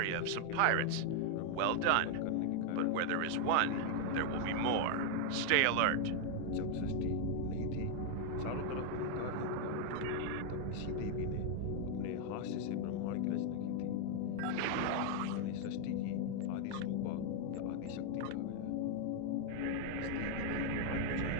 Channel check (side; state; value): both; different; correlation 0.00